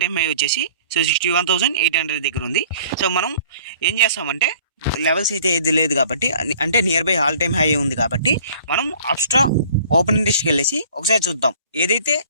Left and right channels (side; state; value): both; inverted; correlation -0.52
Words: టైమ్ హై వచ్చేసి సో 61,800 దగ్గర ఉంది. సో మనం ఏం చేస్తామంటే లెవెల్స్ అయితే ఏది లేదు కాబట్టి, అంటే near by all time high ఉంది కాబట్టి మనం అప్స్ట్రా ఓపెన్ ఇంట్రెస్ట్కి వెళ్ళేసి ఒకసారి చూద్దాం. ఏదైతే